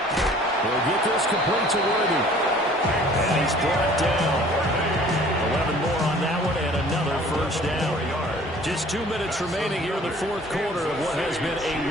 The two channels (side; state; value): both; normal; correlation 0.51